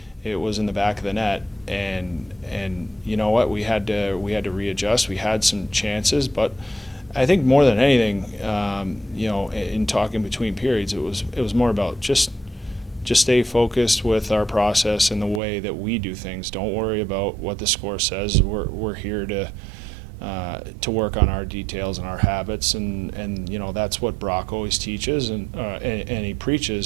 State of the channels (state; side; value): drops out; left; at 15.4 s